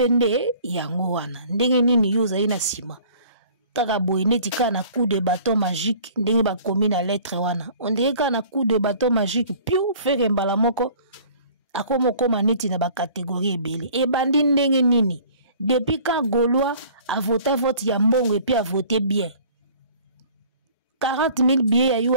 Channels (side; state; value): both; inverted; correlation -0.50